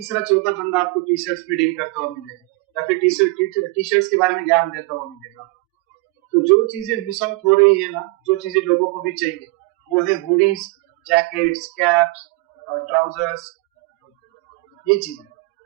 चौथा बंदा आपको टी शर्ट्स में डील करता हुआ मिलेगा, या फिर टी शर्ट्स के बारे में ज्ञान देता हुआ मिलेगा। तो जो चीजें मिस आउट हो रही है ना, जो चीजें लोगों को भी चाहिए, वो है हुडीज, जैकेट्स, कैप्स, ट्राउजर्स, ये चीजें,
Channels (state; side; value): quieter; left; 23.4 dB